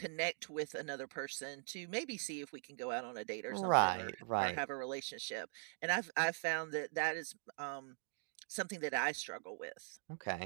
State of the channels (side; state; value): left; silent; digital silence